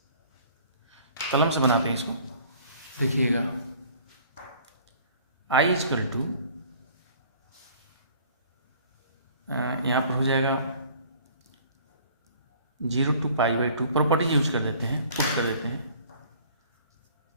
कलम से बनाते हैं इसको, देखिएगा i इजकल टू यहाँ पर हो जाएगा 0 to pi by 2, properties use कर देते हैं, पुट कर देते हैं,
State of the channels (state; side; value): inverted; both; correlation -0.52